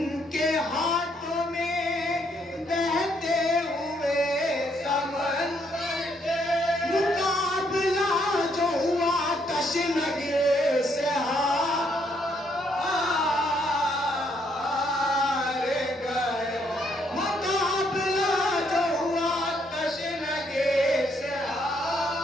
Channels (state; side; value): normal; both; correlation 0.71